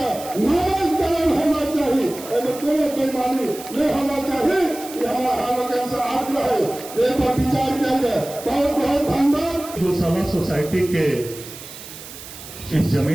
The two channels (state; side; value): noise; right; hiss, 14 dB below the sound